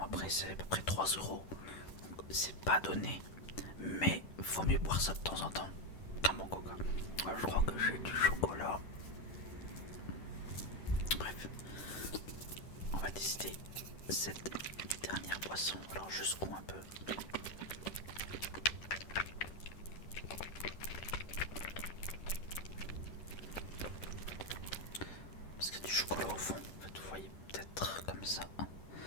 après c'est à peu près 3 €, c'est pas donné, mais faut mieux boire ça de temps en temps qu'un bon coca. Alors, je crois que j'ai du chocolat. Bref, on va décider cette dernière boisson. Alors je secoue un peu. Parce qu'il y a du chocolat au fond. En fait, vous voyez peut-être comme ça. Il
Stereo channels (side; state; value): right; late; 10 ms